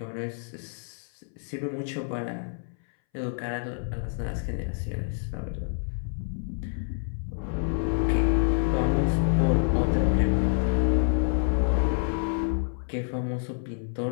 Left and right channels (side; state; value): right; silent; 60 dB below the other